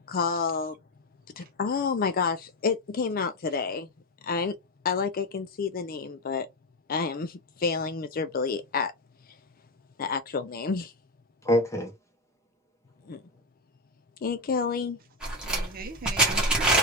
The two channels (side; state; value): both; normal; correlation 0.10